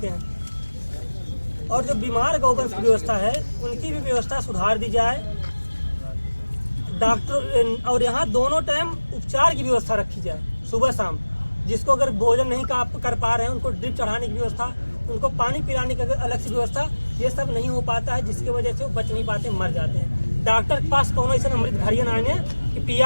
हैं। और जो बीमार गौवंश की व्यवस्था है उनकी भी व्यवस्था सुधार दी जाए, डॉक्टर, और यहाँ दोनों टाइम उपचार की व्यवस्था रखी जाए, सुबह शाम, जिसको अगर भोजन नहीं कर पा रहे हैं उनको ड्रिप चढ़ाने की व्यवस्था, उनको पानी पिलाने की अलग से व्यवस्था, ये सब नहीं हो पाता है, जिसकी वजह से वो बच नहीं पाते, मर जाते हैं। डॉक्टर के पास कौन ऐसा अमृत घड़ियन आने कि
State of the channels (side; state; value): both; inverted; correlation -1.00